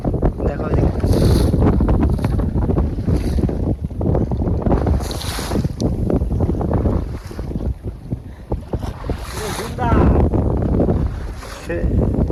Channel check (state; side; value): identical; both; correlation 1.00